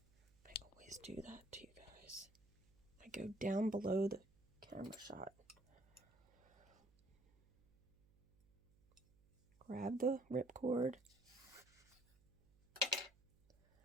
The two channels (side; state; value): right; noise; hum, 30 dB below the sound